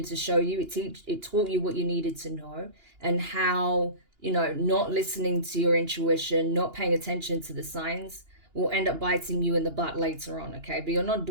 to show you. It taught you what you needed to know and how, you know, not listening to your intuition, not paying attention to the signs will end up biting you in the butt later on, okay? But you're not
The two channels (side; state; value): left; late; 2.9 ms